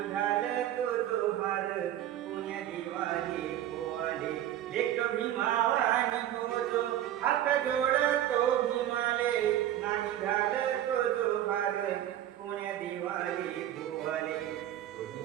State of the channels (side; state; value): left; quieter; 12.2 dB